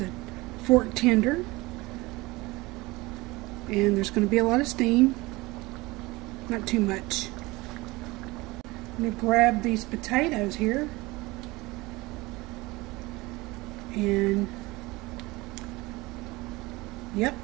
fork tender, and there's going to be a lot of steam, not too much. I'm going to grab these potatoes here, and yep,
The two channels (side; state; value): left; quieter; 21.8 dB